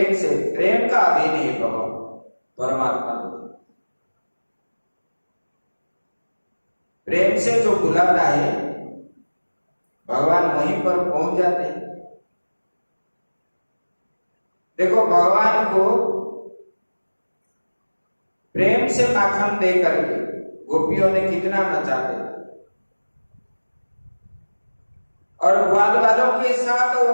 से, प्रेम का अधीन है भगवान परमात्मा। प्रेम से जो बुलाता है भगवान वहीं पर पहुंच जाते हैं। देखो भगवान को प्रेम से माखन दे करके गोपियों ने कितना नचाते, और ग्वाल वालों के साथ वो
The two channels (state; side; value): inverted; both; correlation -1.00